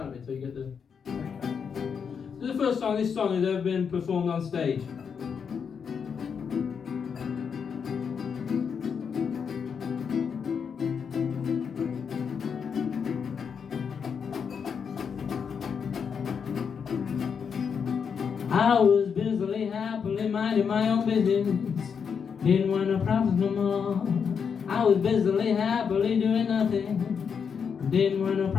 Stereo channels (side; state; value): right; quieter; 6.6 dB